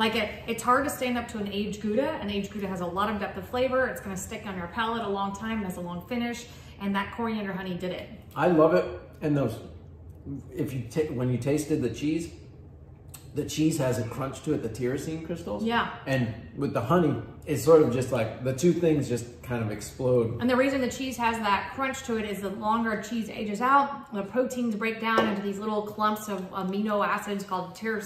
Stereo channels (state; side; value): identical; both; correlation 1.00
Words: it's hard to stand up to an aged Gouda. An aged Gouda has a lot of depth of flavor. It's going to stick on your palate a long time. It has a long finish, and that coriander honey did it. I love it. And those, when you tasted the cheese has a crunch to it, the tyrosine crystals. Yeah. And with the honey, it's sort of just like the two things just kind of explode. And the reason the cheese has that crunch to it is the longer cheese ages out, the proteins break down into these little clumps of amino acids called